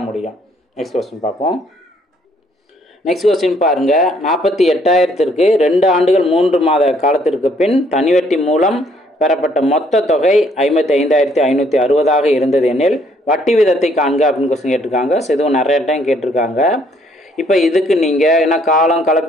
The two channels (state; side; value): normal; both; correlation 0.66